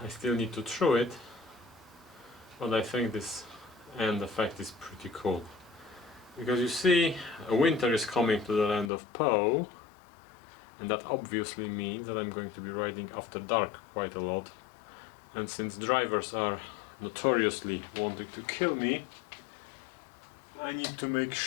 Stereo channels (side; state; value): right; drops out; at 8.9 s